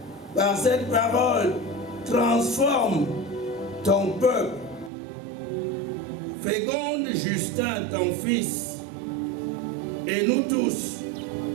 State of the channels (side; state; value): left; drops out; at 4.9 s